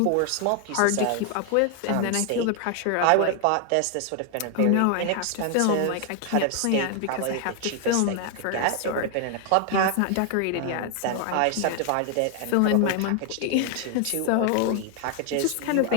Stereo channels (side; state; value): both; different; correlation 0.00